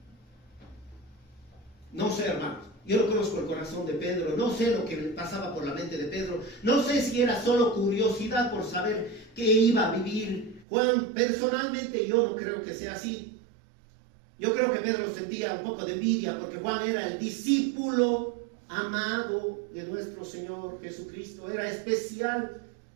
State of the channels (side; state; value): left; drops out; at 10.7 s